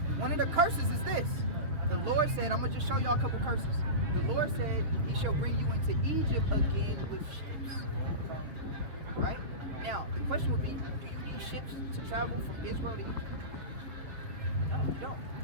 one of the curses is this. The Lord said, I'm going to just show y'all a couple curses. The Lord said he shall bring you into Egypt again with ships. Right? Now, the question would be, do you need ships to travel from Israel to Egypt? No, you don't.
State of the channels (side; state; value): left; late; 6.8 ms